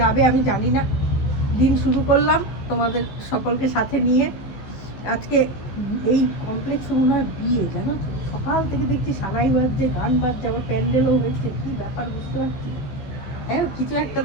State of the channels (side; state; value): right; late; 15 ms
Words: আমি জানি না। দিন শুরু করলাম তোমাদের সকলকে সাথে নিয়ে। আজকে এই কমপ্লেক্সে মনে হয় বিয়ে, জানো তো, সকাল থেকে দেখছি সানাই বাজছে, গান বাজছে, আবার প্যান্ডেলও হয়েছে, কি ব্যাপার বুঝতে পারছি। হ্যাঁ, কিছু একটা